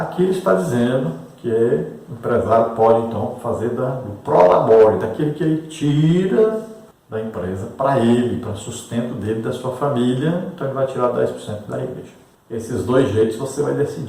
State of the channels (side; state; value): both; identical; correlation 1.00